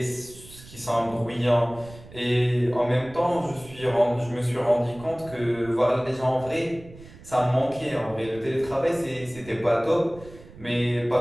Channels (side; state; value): right; noise; rumble, 19 dB below the sound